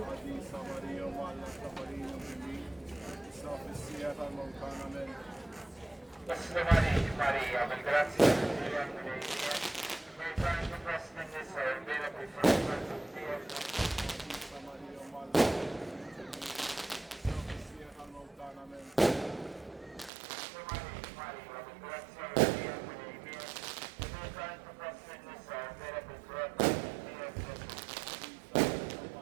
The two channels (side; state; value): left; drops out; at 20.1 s